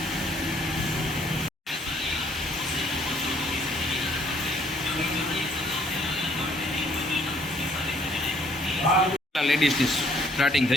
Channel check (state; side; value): normal; both; correlation 0.64